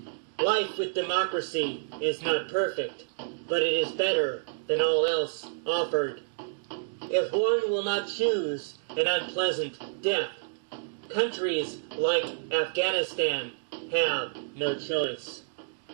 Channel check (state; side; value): silent; left; digital silence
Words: Life with democracy is not perfect, but it is better than all else offered. If one will not choose an unpleasant death, countries like Afghanistan have no choice.